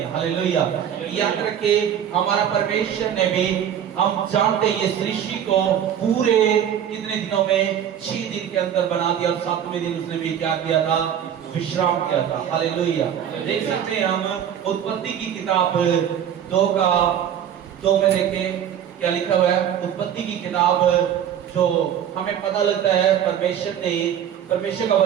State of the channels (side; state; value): left; quieter; 9.4 dB